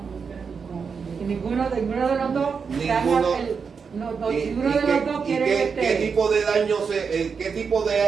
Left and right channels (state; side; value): quieter; left; 5.8 dB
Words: Y ninguno de los dos Ninguno. ninguno ¿Y de los dos quiere qué tipo de